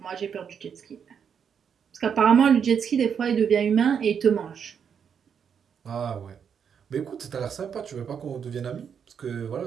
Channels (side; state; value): left; quieter; 7.4 dB